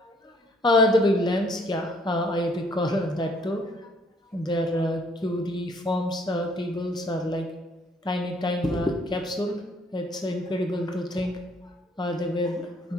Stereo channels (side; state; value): both; normal; correlation 0.62